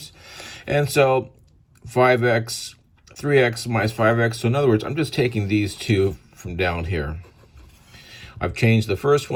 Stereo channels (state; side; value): identical; both; correlation 1.00